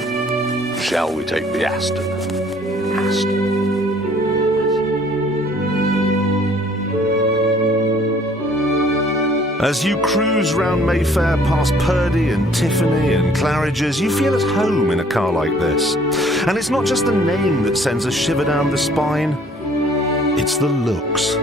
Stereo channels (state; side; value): normal; both; correlation 0.58